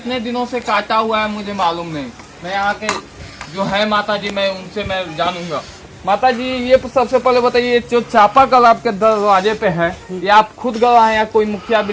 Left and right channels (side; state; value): both; identical; correlation 1.00